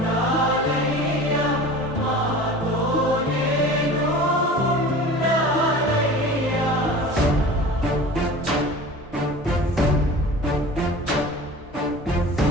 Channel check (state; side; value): normal; both; correlation 0.39